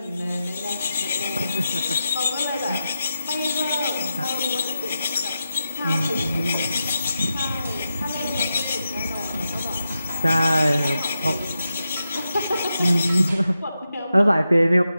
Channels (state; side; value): inverted; both; correlation -0.89